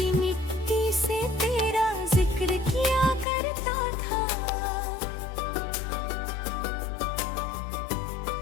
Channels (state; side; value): drops out; right; at 3.2 s